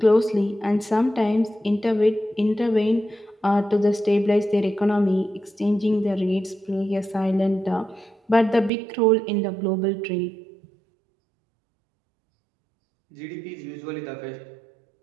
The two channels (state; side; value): drops out; left; at 8.7 s